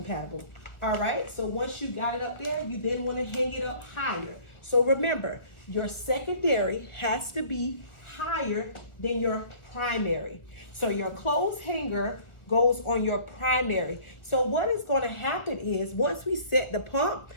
All right, so once you got it up there, you then want to hang it up higher. So remember, your secondary has to be higher than your primary. So your clothes hanger goes on your primary. So what is going to happen is once we set the pump,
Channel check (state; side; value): late; right; 1.5 ms